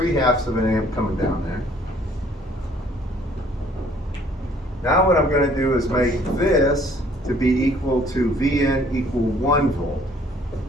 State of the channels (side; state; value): both; normal; correlation 0.59